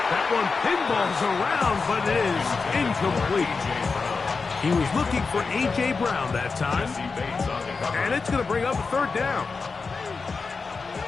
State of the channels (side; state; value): right; quieter; 4.6 dB